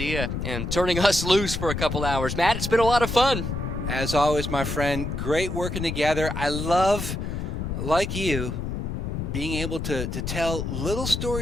and turning us loose for a couple hours. Matt, it's been a lot of fun. As always, my friend, great working together. I love, like you, being able to tell little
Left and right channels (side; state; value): left; noise; rumble, 4 dB below the sound